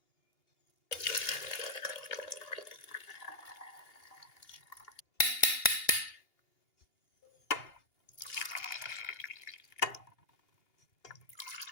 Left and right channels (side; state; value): right; late; 2.8 ms